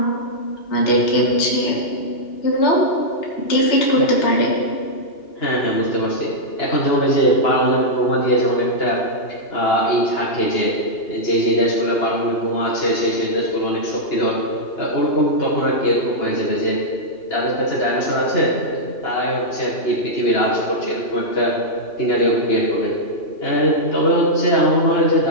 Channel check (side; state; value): right; late; 2.8 ms